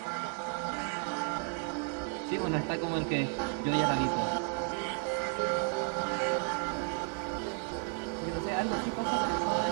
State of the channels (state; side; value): quieter; left; 39.3 dB